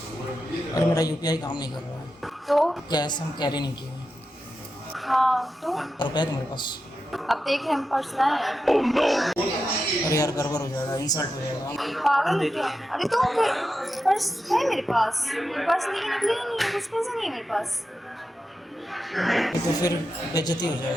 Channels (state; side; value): normal; both; correlation 0.89